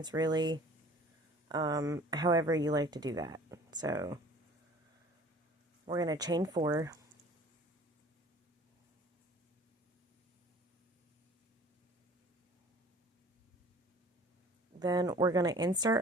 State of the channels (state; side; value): normal; both; correlation 0.48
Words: really. However you like to do that. So we're going to chain 4. Then we're going to